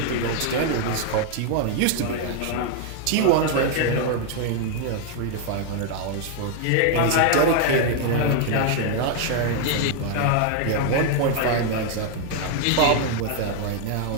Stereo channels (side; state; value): both; different; correlation 0.00